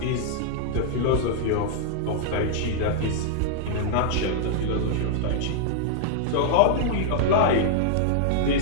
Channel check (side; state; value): both; different; correlation -0.01